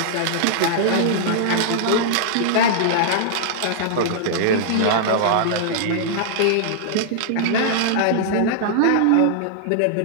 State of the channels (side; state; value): both; different; correlation -0.01